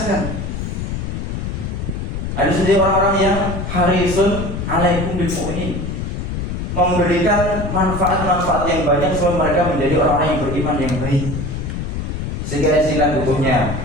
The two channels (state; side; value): noise; left; rumble, 4 dB below the sound